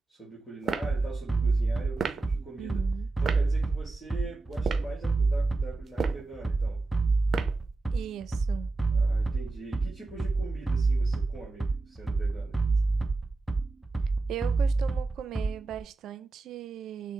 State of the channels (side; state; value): left; quieter; 3.4 dB